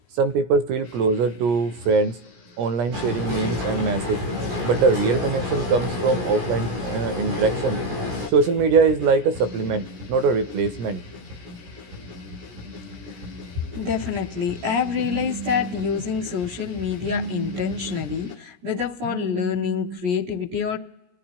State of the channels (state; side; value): late; left; 17 ms